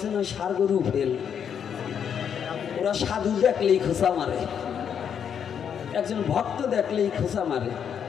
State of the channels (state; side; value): quieter; right; 8.0 dB